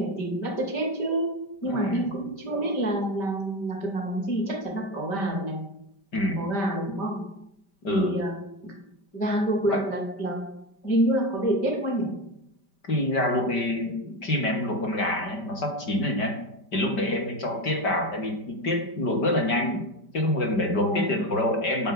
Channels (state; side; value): late; right; 5.1 ms